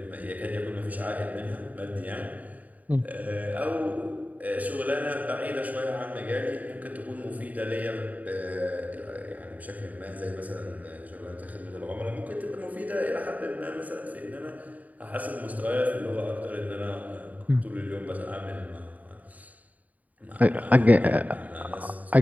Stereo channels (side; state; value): left; late; 0.074 ms